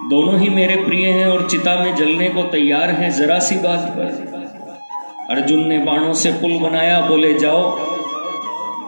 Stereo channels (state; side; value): inverted; both; correlation -1.00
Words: दोनों ही मेरे प्रिय हैं और चिता में जलने को तैयार हैं जरा सी बात पर। अर्जुन ने बाणों से पुल बनाया, बोले जाओ।